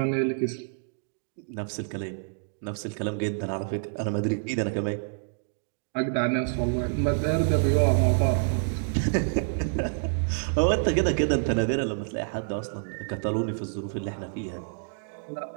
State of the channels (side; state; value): left; silent; digital silence